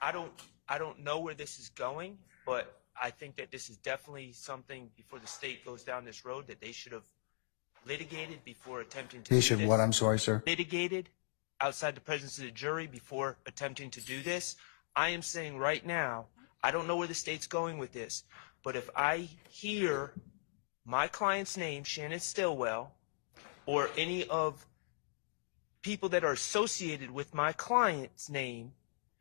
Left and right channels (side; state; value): right; silent; digital silence